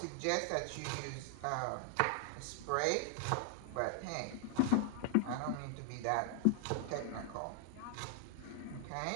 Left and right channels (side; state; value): both; different; correlation 0.00